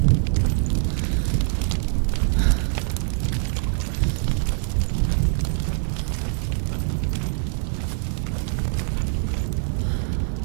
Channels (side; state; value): left; silent; digital silence